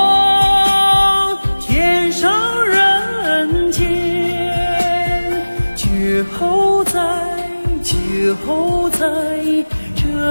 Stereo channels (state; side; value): inverted; both; correlation -1.00